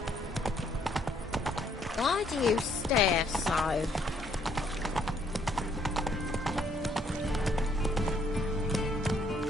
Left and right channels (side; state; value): both; normal; correlation 0.68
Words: Why do you stare so?